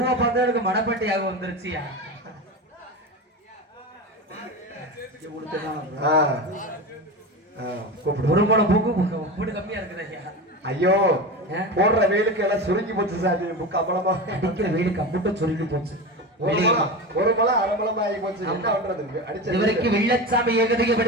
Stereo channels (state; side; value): normal; both; correlation 0.24